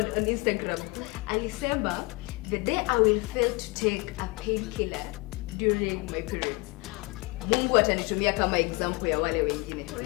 Instagram. Alisema, the day I will fail to take a painkiller during my periods, Mungu atanitumia kama example ya wale wengine.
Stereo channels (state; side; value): quieter; right; 25.6 dB